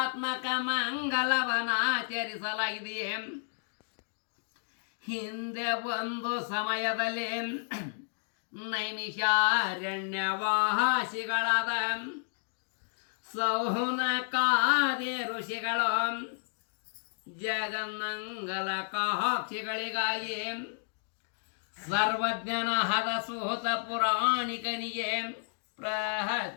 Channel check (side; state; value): right; silent; digital silence